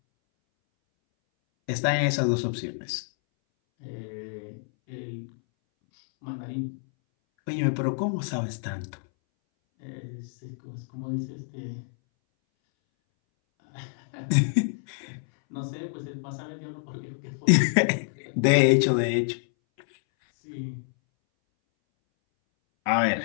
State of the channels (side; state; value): right; silent; 60 dB below the other